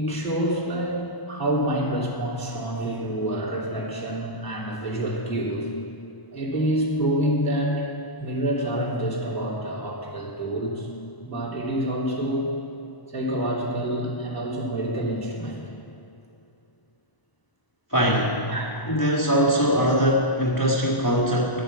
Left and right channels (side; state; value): right; late; 1.0 ms